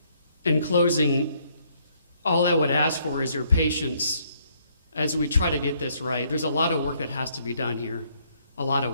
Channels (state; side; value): inverted; both; correlation -0.68